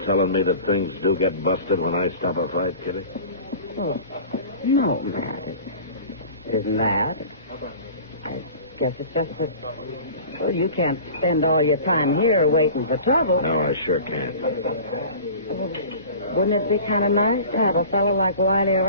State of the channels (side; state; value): both; inverted; correlation -0.40